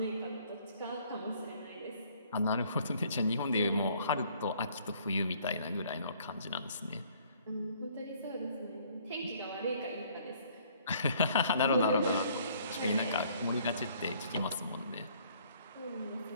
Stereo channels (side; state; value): both; inverted; correlation -0.60